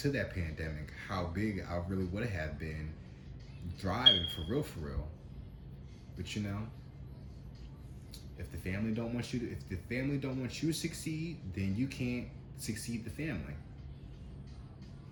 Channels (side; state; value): both; identical; correlation 1.00